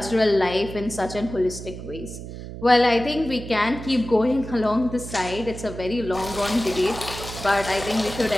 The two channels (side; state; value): right; noise; hum, 11 dB below the sound